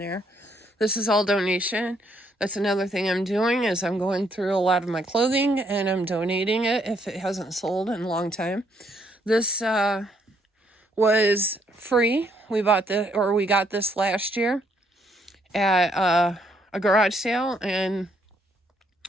This is all donation. That's another thing I'm doing, is I'm going through a lot of my clothing and I'm donating it if it hasn't sold in a long time. This was free. We got this last year at a garage sale, and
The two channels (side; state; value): both; normal; correlation 0.70